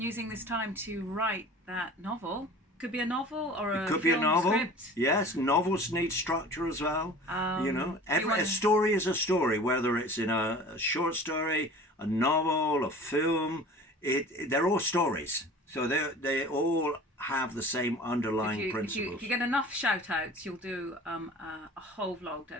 using this time to write that novel, could be a novel or a film script. Yes, novels need structure as well. A story is a story, whether it's in a short story, a novel, a film. They're all stories, so they all have the same underlying principles. If you get enough shout outs, you'll do a whole vlog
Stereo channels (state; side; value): normal; both; correlation 0.42